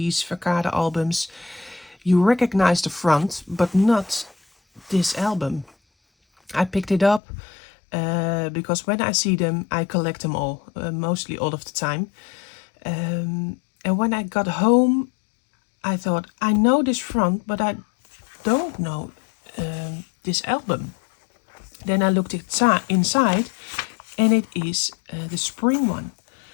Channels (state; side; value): drops out; right; at 7.2 s